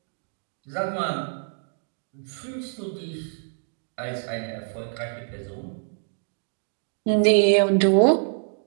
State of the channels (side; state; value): left; silent; digital silence